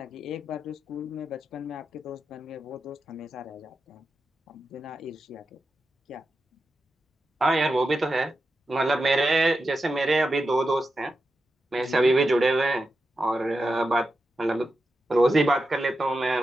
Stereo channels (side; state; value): both; normal; correlation 0.89